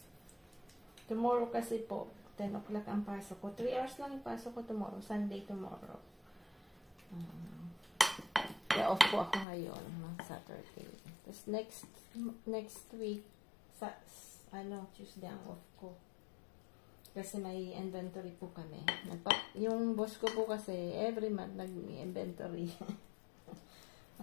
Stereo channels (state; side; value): drops out; right; at 9.5 s